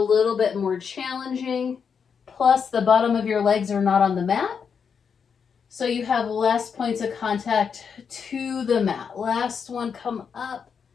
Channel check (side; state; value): right; quieter; 6.5 dB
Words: bit more challenging. Plus the bottom of your legs are not on the mat, so you have less points of contact to the mat. Last one, come up,